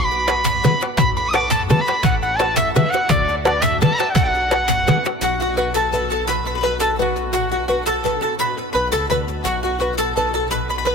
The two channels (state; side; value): normal; both; correlation 0.52